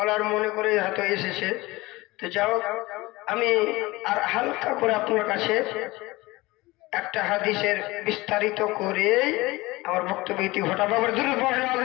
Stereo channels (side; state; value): right; quieter; 20.9 dB